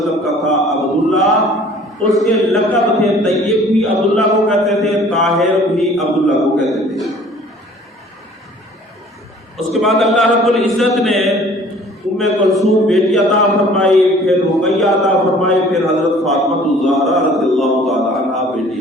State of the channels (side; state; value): both; normal; correlation 0.52